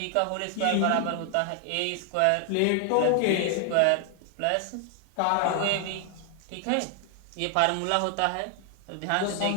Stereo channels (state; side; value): different; both; correlation 0.00